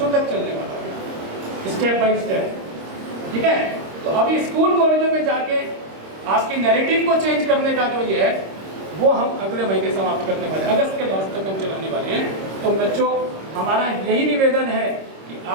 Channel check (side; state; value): left; late; 26 ms